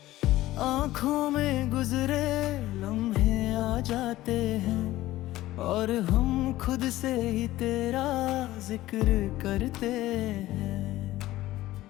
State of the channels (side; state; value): right; quieter; 16.1 dB